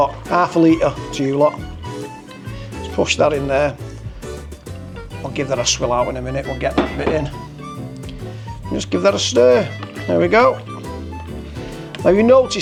half a litre to you lot. Let's push that in there. I'll give that a swill out in a minute, we'll get that bit in. Just give that a stir. There we go. Now you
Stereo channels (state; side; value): identical; both; correlation 1.00